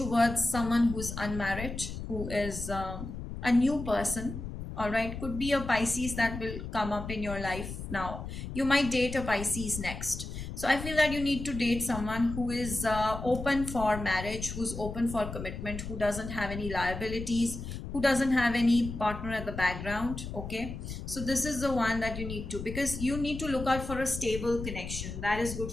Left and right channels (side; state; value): left; noise; rumble, 8 dB below the sound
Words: someone who's unmarried, who is a new person. All right, could be a Pisces that will come up in your life now. You might date a Pisces next. So I feel that you need to date someone who is open for marriage, who's open for commitment, who doesn't have any liabilities, who doesn't have any partner at the background. Okay, so this is the one that you need to, because you need to look out for a stable connection that is good